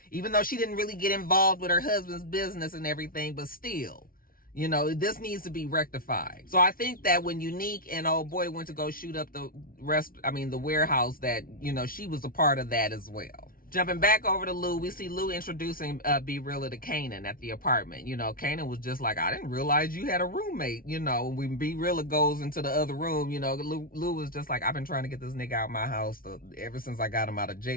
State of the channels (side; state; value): right; late; 0.42 ms